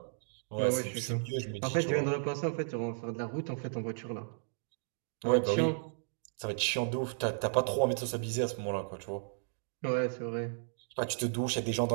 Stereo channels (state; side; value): silent; left; digital silence